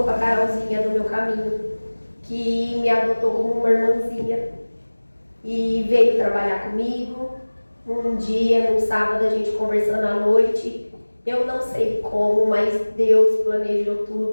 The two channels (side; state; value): both; inverted; correlation -1.00